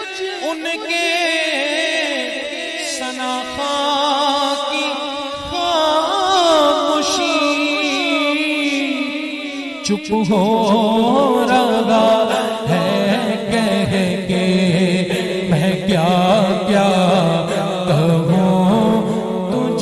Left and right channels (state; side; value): identical; both; correlation 1.00